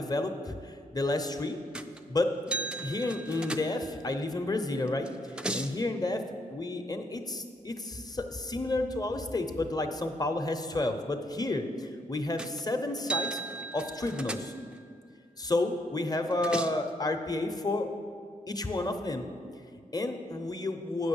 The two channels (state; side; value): normal; both; correlation 0.73